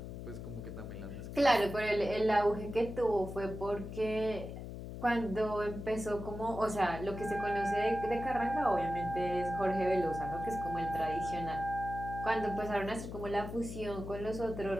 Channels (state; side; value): noise; left; hum, 9 dB below the sound